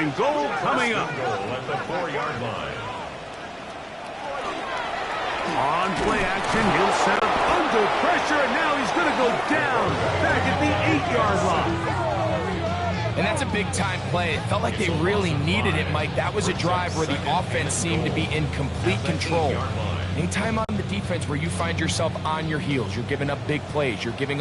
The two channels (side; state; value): both; identical; correlation 1.00